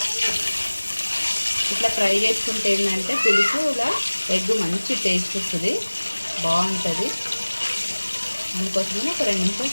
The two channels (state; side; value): inverted; both; correlation -1.00